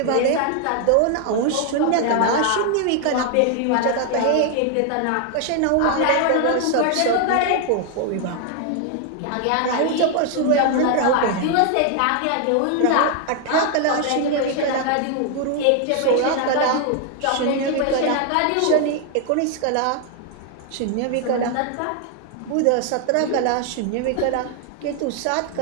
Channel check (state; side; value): different; both; correlation 0.00